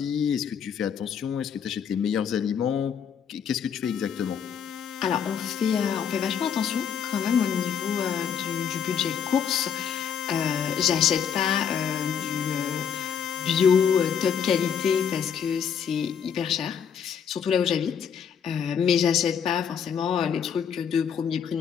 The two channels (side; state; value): right; quieter; 7.6 dB